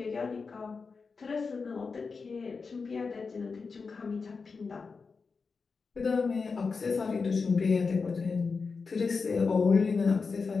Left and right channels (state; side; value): quieter; right; 4.8 dB